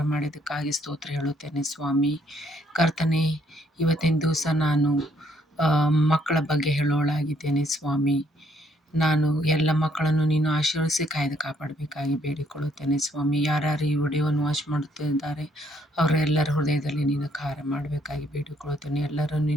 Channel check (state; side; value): normal; both; correlation 0.68